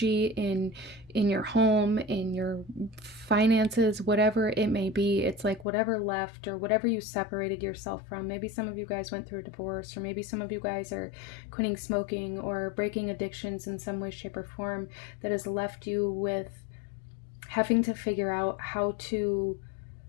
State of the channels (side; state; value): right; drops out; at 5.7 s